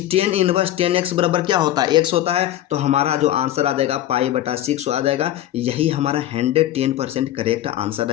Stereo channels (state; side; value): quieter; right; 13.1 dB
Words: tan इनवर्स tan x बराबर क्या होता है x होता है। तो हमारा जो आंसर आ जाएगा π/6 आ जाएगा। यही हमारा 110% करेक्ट आंसर